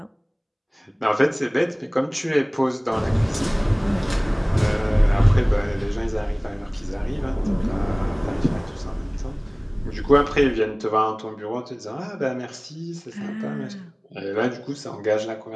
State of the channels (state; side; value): identical; both; correlation 1.00